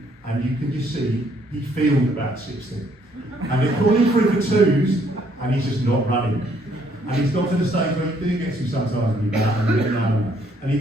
and you can just see he feels about 60. And they're calling for him for twos and he's just not running. And he's got to the stage where he gets him sometimes and he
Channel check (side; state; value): both; normal; correlation 0.67